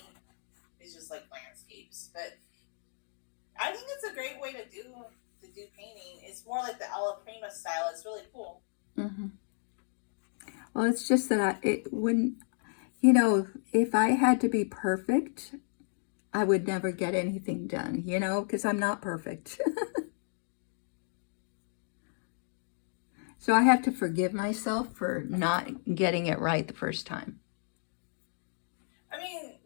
is just like landscapes. But I think it's a great way to do painting. It's more like the Alla Prima style. It's really cool. Hmm. Well, it's just that it when if I had to be perfect, I would never get anything done. Because I'm not perfect. So I have to forgive myself for not getting it right the first time. I mean,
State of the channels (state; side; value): silent; right; digital silence